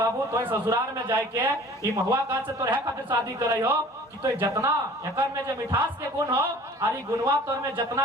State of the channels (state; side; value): normal; both; correlation 0.47